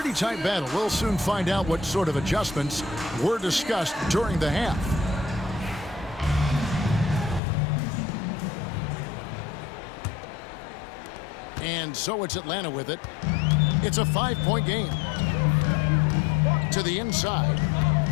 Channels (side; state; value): right; drops out; at 7.4 s